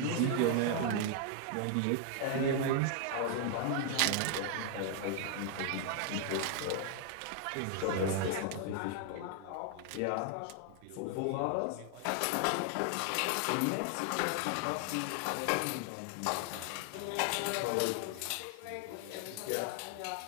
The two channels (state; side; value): different; both; correlation 0.00